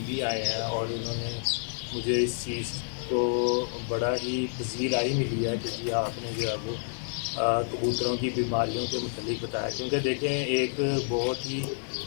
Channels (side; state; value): right; silent; digital silence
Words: بھی آئے ہیں، اور انہوں نے مجھے اس چیز کو بڑا ہی پذیرائی ملی ہے کہ جی آپ نے جو ہے وہ کبوتروں کی بیماریوں کے متعلق بتایا، کیونکہ دیکھیں ایک بہت ہی